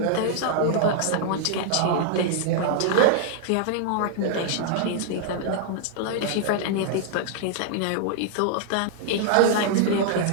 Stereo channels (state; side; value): different; both; correlation -0.01